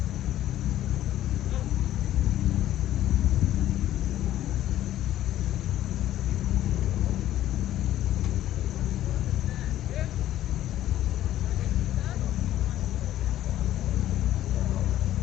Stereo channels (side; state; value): right; quieter; 13.0 dB